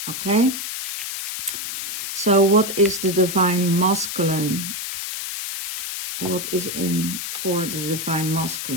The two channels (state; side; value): noise; left; hiss, 5 dB below the sound